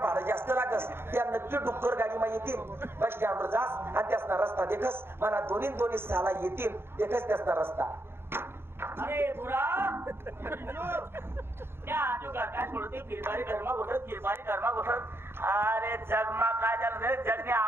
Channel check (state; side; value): late; left; 0.11 ms